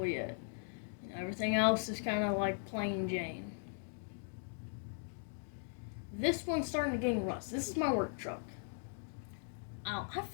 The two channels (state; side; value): silent; right; digital silence